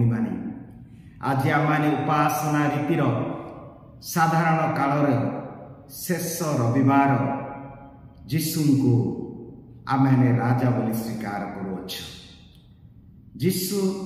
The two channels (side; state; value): both; identical; correlation 1.00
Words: माने, आज आमाने उपासना रीतिर साधारण कालर शेष रविवार जीशु को आमे राजा बोली स्वीकार करुअछ। जीशु